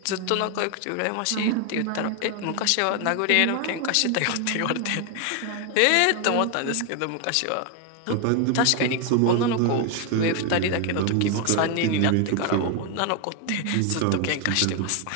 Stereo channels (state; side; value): different; both; correlation 0.01